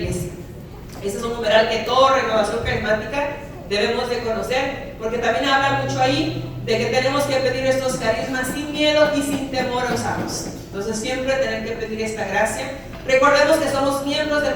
Este es un numeral que toda renovación carismática debemos de conocer, porque también habla mucho ahí de que tenemos que pedir estos carismas sin miedo y sin temor a usarlos. Entonces siempre tener que pedir esta gracia. Recordemos que somos miembros del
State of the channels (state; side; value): identical; both; correlation 1.00